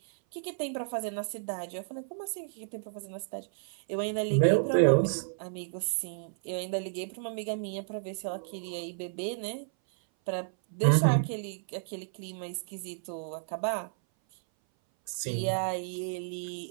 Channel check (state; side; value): silent; left; 57 dB below the other